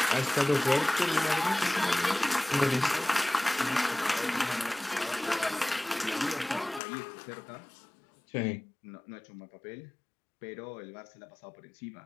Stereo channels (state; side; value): drops out; right; at 6.8 s